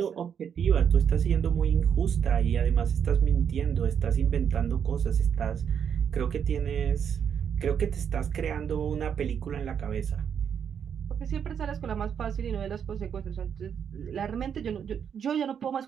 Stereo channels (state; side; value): quieter; left; 7.8 dB